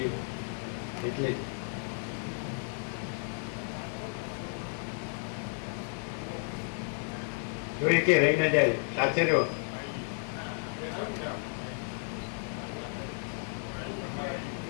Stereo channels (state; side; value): silent; right; 56 dB below the other